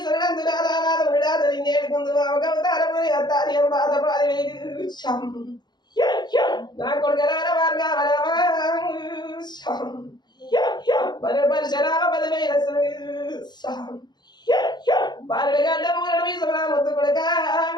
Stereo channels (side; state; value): right; late; 0.21 ms